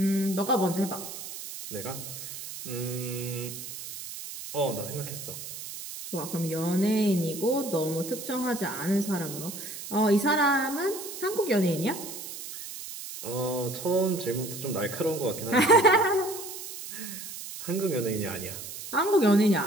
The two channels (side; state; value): right; noise; hiss, 10 dB below the sound